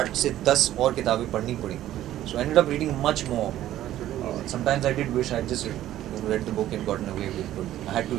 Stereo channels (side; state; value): left; quieter; 13.2 dB